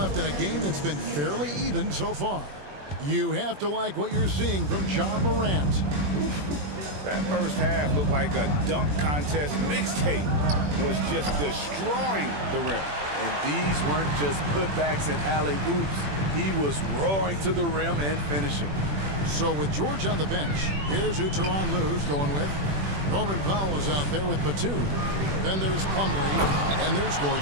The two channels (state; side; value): late; left; 21 ms